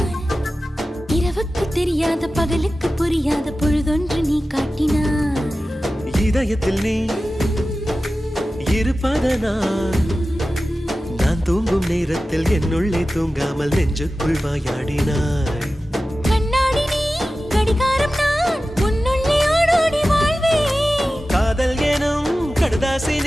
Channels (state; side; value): normal; both; correlation 0.95